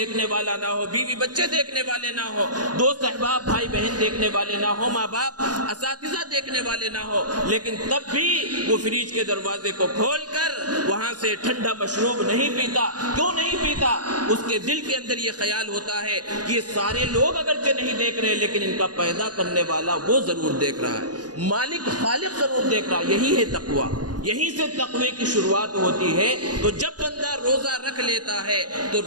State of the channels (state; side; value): late; left; 0.69 ms